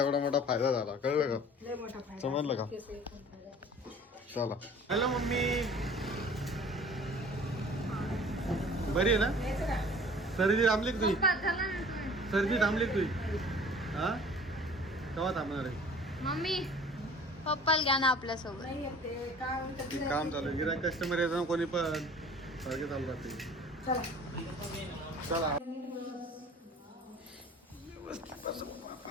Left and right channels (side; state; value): both; normal; correlation 0.47